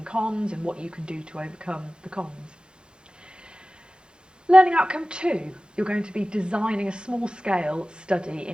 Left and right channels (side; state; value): left; late; 0.050 ms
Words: cons and what you can do to overcome the cons. Learning outcome 2, you're going to be designing a small-scale study